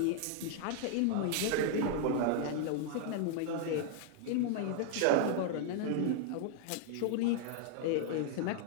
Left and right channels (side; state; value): both; different; correlation 0.00